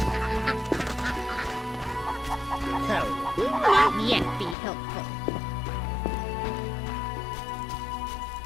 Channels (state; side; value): drops out; right; at 4.5 s